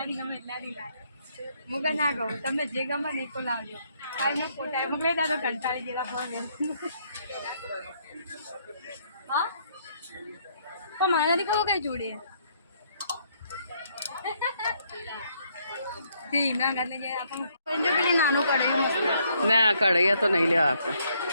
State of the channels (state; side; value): inverted; both; correlation -0.70